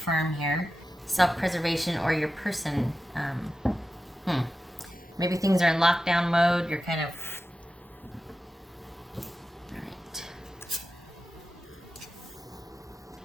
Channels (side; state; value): both; normal; correlation 0.92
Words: here. Self-preservation or your person. Maybe things are in lockdown mode. You're kind of... All right.